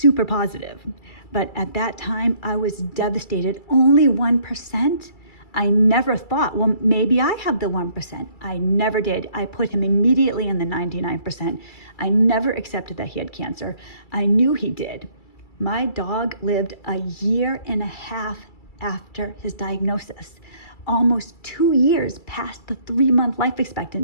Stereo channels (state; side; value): late; right; 2.3 ms